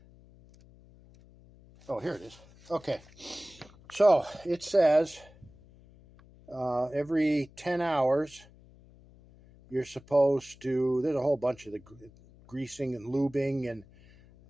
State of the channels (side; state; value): left; noise; hum, 25 dB below the sound